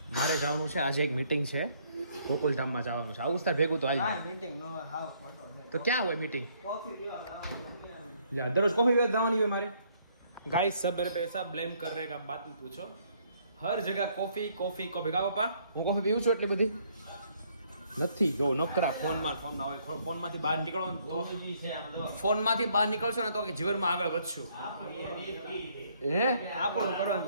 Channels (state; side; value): inverted; both; correlation -0.67